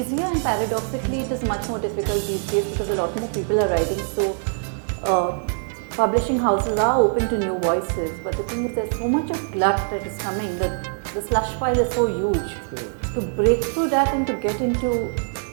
and paradoxically it is much more difficult these days because a lot more people are writing. So publishing houses are open to new voices, but the thing is there's so much of glut that is coming. The slush pile is so huge. To break through that and to get into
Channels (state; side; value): silent; left; digital silence